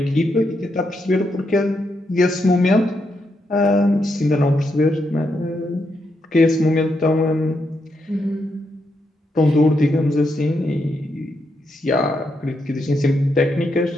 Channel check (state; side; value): normal; both; correlation 0.81